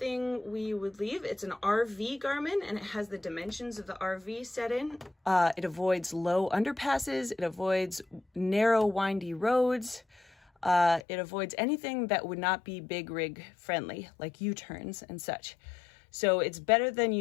we would leave. It's an RV Garmin, and it has the dimensions of the RV set in. It avoids low underpasses. It avoids narrow, windy roads. It avoids anything that would not be big rig friendly, like U-turns and such. So it's better than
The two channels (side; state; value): right; drops out; at 11.0 s